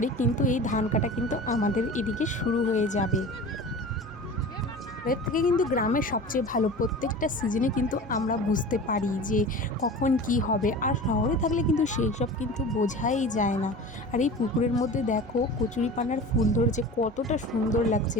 কিন্তু এই ধান কাটা কিন্তু আমাদের এদিকে শুরু হয়ে যাবে। এর থেকে কিন্তু গ্রামের সবচেয়ে ভালো, প্রত্যেকটা সিজনে কিন্তু আমরা বুঝতে পারি যে কখন কি হবে। আর শহরে থাকলে কিন্তু সেই সব কিন্তু বোঝাই যায় না। আর এই পুকুরের মধ্যে দেখো কচুরিপানার ফুল ধরেছে, কতটা সুন্দর লাগছে।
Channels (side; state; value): both; normal; correlation 0.36